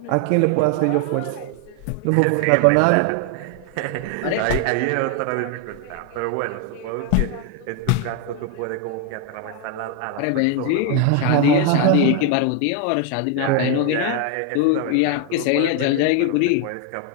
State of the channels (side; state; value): both; different; correlation 0.01